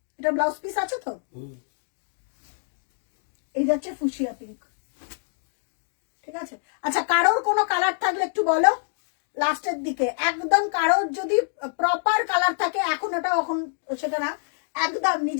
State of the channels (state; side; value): silent; right; 61 dB below the other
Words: এটা ব্লাউজ পিস আছে তো? এই যাচ্ছে ফুশিয়া পিঙ্ক, ঠিক আছে। আচ্ছা, কারোর কোনো কালার থাকলে একটু বলো লাস্টের দিকে। একদম কারোর যদি প্রপার কালার থাকে, এখন ওটা এখন সেটা না, একদম